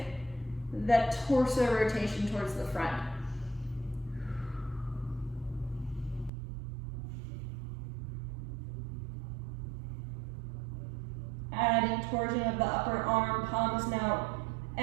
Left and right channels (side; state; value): left; drops out; at 6.3 s